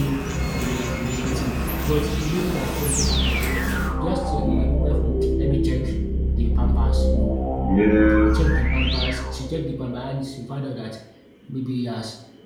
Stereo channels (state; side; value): identical; both; correlation 1.00